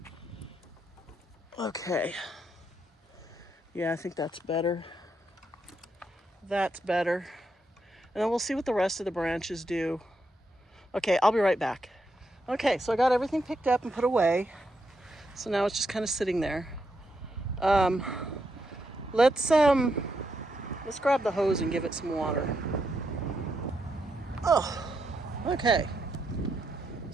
Okay. Yeah, I think that's better. That's better. And then we'll see what the rest of the branches do. Okay, I'll be right back. Okay, so I got everything picked up and put away. So now it's just kind of sitting there. Let's grab the hose and give it some water. Oh, okay.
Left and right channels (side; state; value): both; normal; correlation 0.81